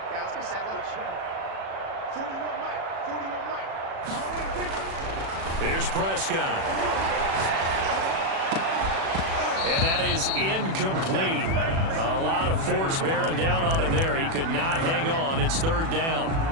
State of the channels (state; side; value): late; left; 36 ms